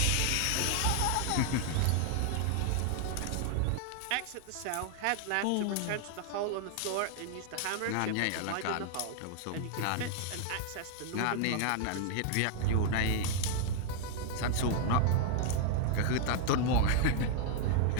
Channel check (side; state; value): both; different; correlation 0.00